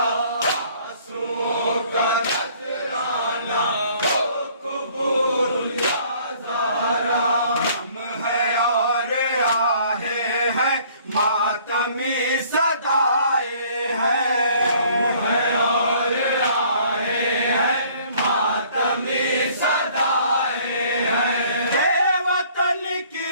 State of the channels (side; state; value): both; inverted; correlation -0.57